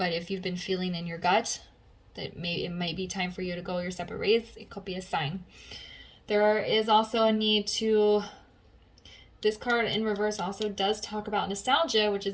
if you've been feeling in your gut that it may be time for you to go your separate ways, it could be a sign. There is also a need to... This card in reverse also does talk about nostalgia, which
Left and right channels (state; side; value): identical; both; correlation 1.00